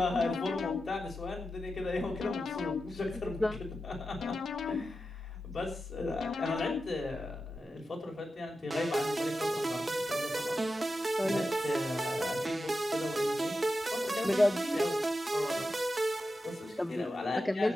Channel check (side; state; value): both; normal; correlation 0.91